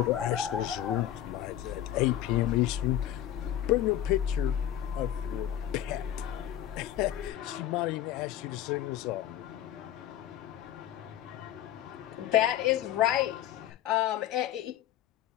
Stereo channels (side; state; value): right; quieter; 12.0 dB